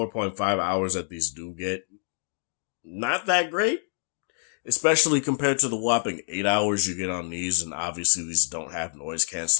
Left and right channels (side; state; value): right; silent; digital silence